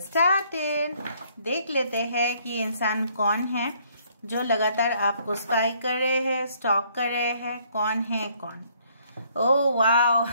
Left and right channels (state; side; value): inverted; both; correlation -0.65